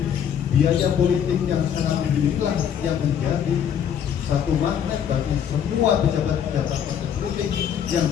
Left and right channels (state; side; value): quieter; right; 8.7 dB